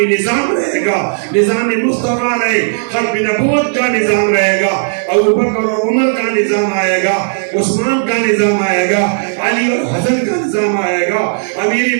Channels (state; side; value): silent; left; 71 dB below the other